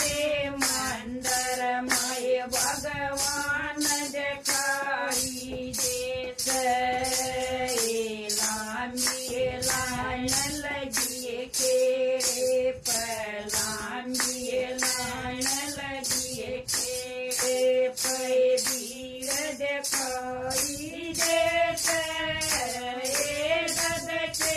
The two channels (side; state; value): both; identical; correlation 1.00